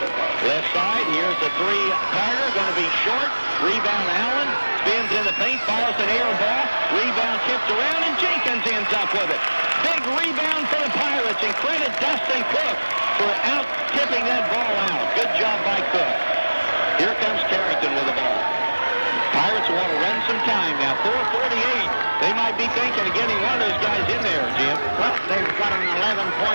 Left side, here's the three. Carter going to be short. Rebound Allen. Spins in the paint, fires an air ball. Rebound tipped around, and Jenkins ends up with it. Big rebound for the Pirates, and credit Dustin Cook for out-tipping that ball out. Good job by Cook. Here comes Carrington with the ball. Pirates want to run some time now. 4:48. They might be thinking of getting one of those guys in there, Jim. Well, they've got an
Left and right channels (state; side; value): inverted; both; correlation -1.00